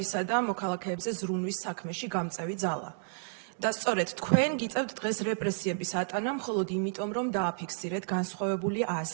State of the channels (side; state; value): left; silent; digital silence